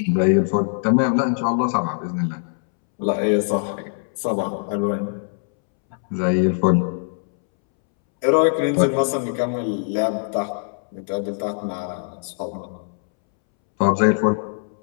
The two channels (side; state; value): right; silent; 64 dB below the other